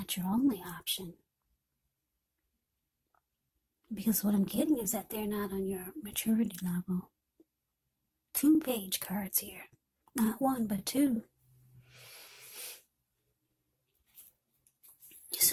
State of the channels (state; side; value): identical; both; correlation 1.00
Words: your only option. Because what I'm getting is that they're not on your maturity level. Two page cards here. Not one, but two.